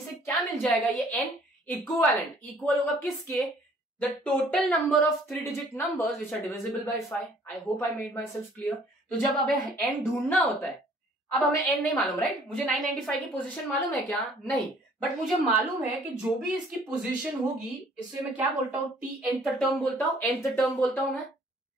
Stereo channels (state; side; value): normal; both; correlation 0.58